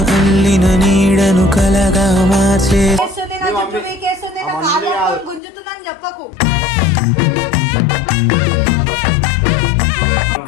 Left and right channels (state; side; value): drops out; right; at 5.4 s